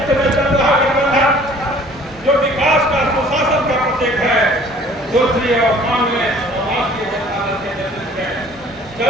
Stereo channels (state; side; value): normal; both; correlation 0.53